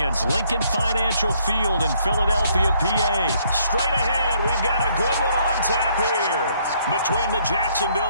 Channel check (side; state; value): both; inverted; correlation -0.67